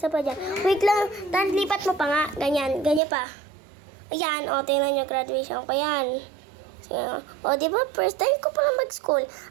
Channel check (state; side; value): drops out; left; at 3.0 s